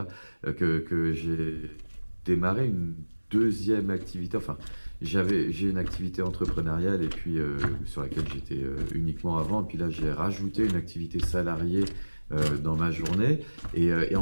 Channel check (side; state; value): both; inverted; correlation -1.00